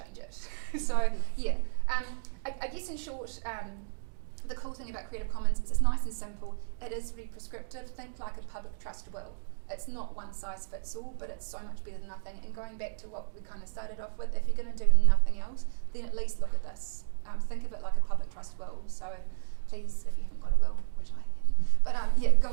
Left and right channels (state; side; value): silent; left; digital silence